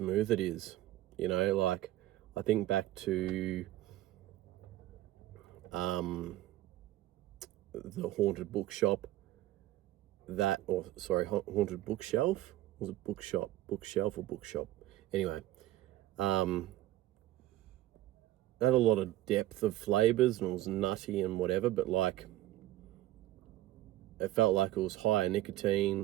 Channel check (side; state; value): left; quieter; 15.4 dB